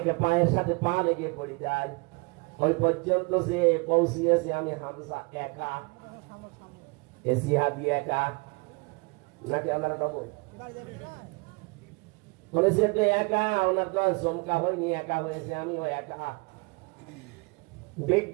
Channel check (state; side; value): quieter; left; 29.6 dB